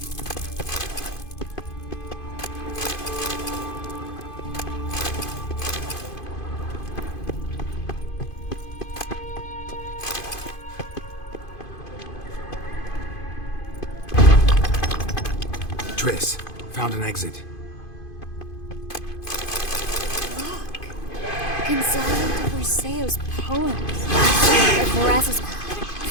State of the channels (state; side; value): late; right; 2.5 ms